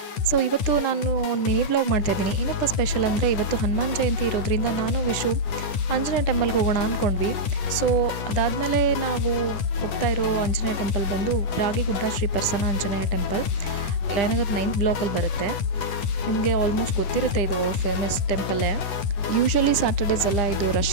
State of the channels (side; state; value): right; late; 10 ms